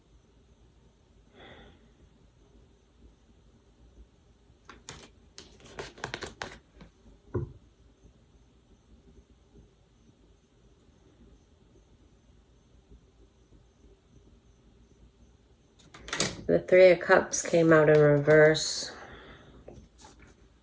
The Three of Cups came out in reverse.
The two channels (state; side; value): identical; both; correlation 1.00